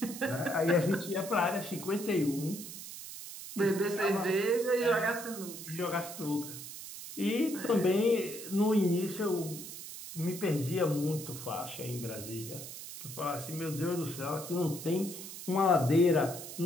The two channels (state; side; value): noise; right; hiss, 11 dB below the sound